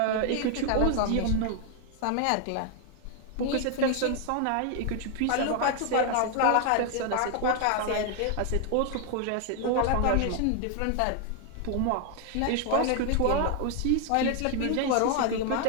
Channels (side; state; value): both; different; correlation 0.01